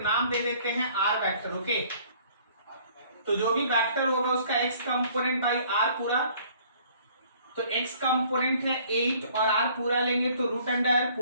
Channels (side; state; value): both; inverted; correlation -0.57